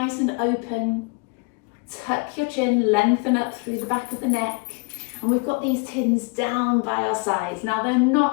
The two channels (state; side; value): quieter; right; 30.8 dB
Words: and open. Tuck your chin, lengthen up through the back of the neck. And we've got these tins down by our sides. Now they're